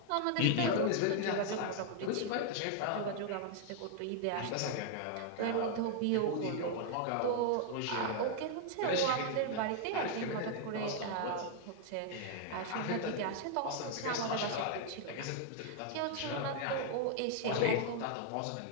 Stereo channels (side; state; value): both; different; correlation 0.00